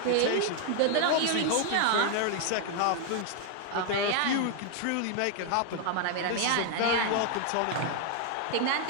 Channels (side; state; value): both; different; correlation 0.00